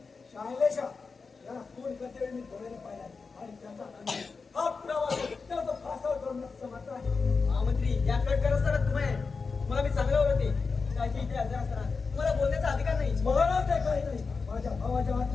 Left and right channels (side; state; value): right; quieter; 4.7 dB